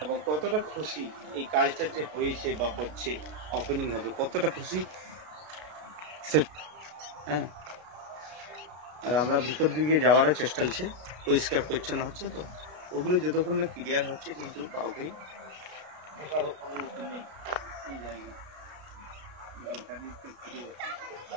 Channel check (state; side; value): late; left; 33 ms